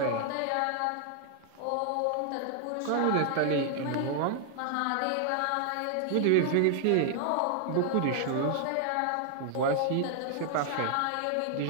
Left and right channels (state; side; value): different; both; correlation 0.00